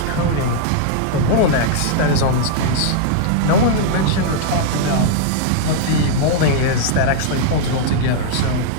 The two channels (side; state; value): both; different; correlation -0.01